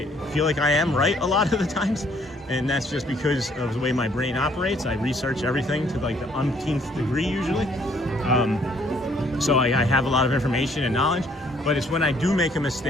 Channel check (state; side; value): normal; both; correlation 0.63